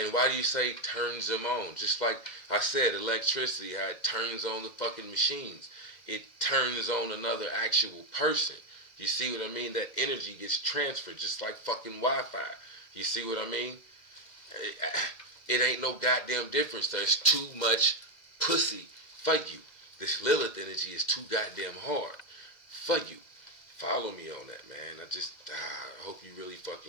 why do you say turns them on? Just like I said, electricity, how it turns on the fucking machines. It turns on another actual person. You see what I mean? That energy gets transferred just like fucking Wi-Fi. You see what I mean? It ain't no goddamn difference. There's too much pussy for you. This Lilith energy is too goddamn hard for you. Follow me on that, man. I hope you really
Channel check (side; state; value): right; late; 2.1 ms